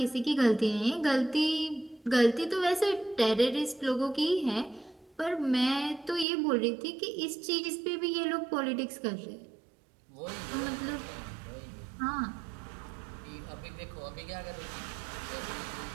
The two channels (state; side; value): drops out; left; at 6.2 s